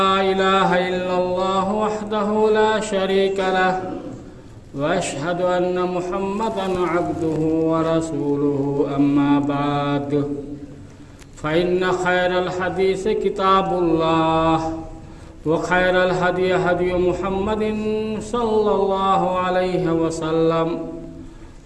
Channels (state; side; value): identical; both; correlation 1.00